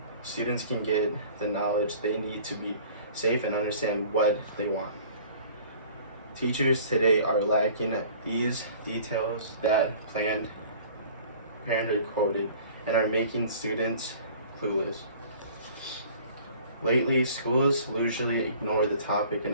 students can get the knowledge they need to be safe and understand what they want. Teachers today are lacking these details that Planned Parenthood quoted and are making students clueless. Lately, schools usually ignore the topic in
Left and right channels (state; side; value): inverted; both; correlation -0.49